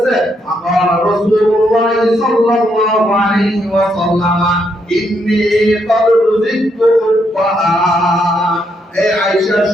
আকাল রাসূলুল্লাহ সাল্লাল্লাহু আলাইহি ওয়াসাল্লাম ইন্নী ক্বাদ রুজিকতু হুব্বাহা, এই আয়েশা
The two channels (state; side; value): normal; both; correlation 0.76